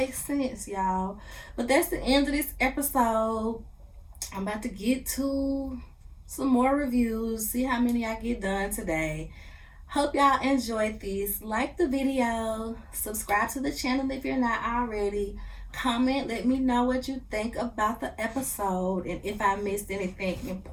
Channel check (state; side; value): identical; both; correlation 1.00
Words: sense, y'all. But that's the end of this episode. I'm about to get to some more reviews, see how many I get done today. Hope y'all enjoyed this. Like the video, subscribe to the channel if you're not already. Comment, let me know what you think about the episode and if I missed anything